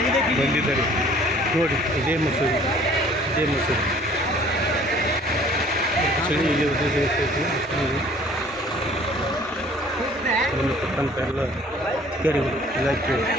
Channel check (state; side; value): normal; both; correlation 0.54